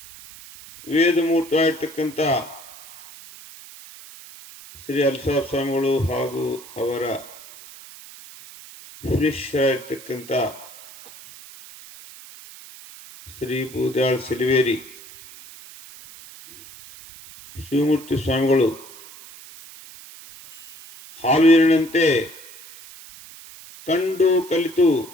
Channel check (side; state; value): right; noise; hiss, 18 dB below the sound